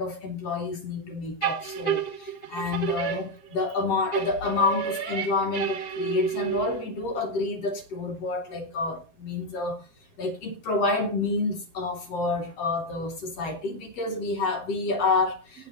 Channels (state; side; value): late; right; 7.5 ms